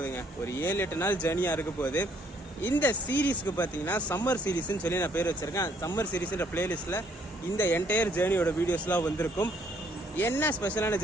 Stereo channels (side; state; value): both; normal; correlation 0.65